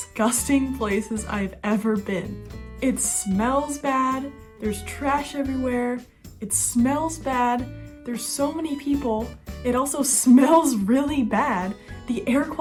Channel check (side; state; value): both; identical; correlation 1.00